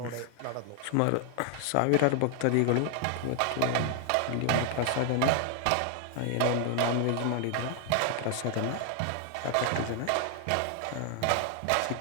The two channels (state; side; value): different; both; correlation 0.00